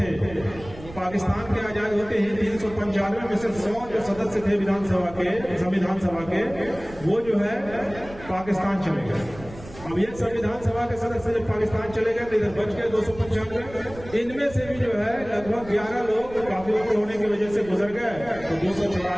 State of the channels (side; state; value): right; noise; rumble, 17 dB below the sound